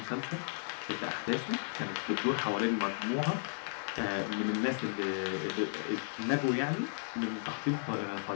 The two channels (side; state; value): right; silent; digital silence